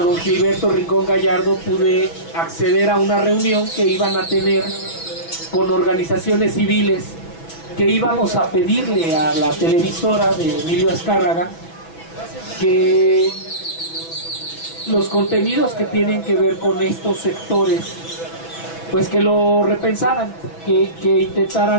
Gilberto Rincón Gallardo pude acceder a una reunión que iban a tener con organizaciones civiles, que íbamos a pedirle a la televisora de Emilio Azcárraga que los contenidos que tienen que ver con estos sectores, pues que lo repensaran, que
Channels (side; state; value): right; late; 6.1 ms